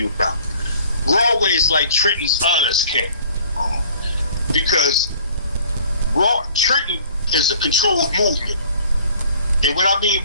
about. Rahway is like Trenton's honest camp. Because Trenton is a controlled movement. And what I mean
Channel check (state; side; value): inverted; both; correlation -0.53